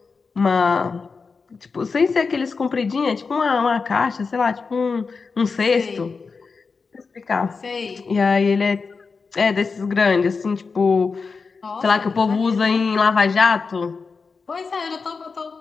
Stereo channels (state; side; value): quieter; right; 4.8 dB